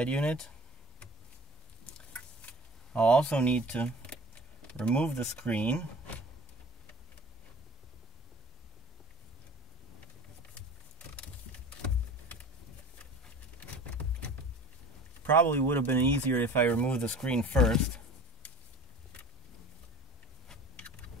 unit. I'll also need to remove the screen. Probably would have been easier if I removed the screen first.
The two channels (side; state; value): both; normal; correlation 0.42